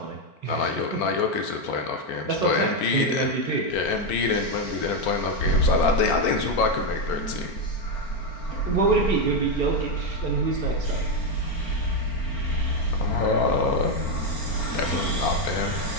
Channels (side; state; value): right; late; 4.4 ms